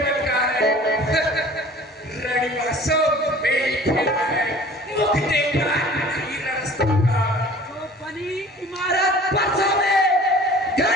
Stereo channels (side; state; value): both; normal; correlation 0.46